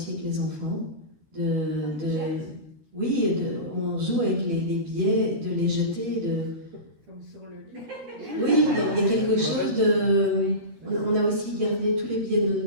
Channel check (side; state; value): left; late; 13 ms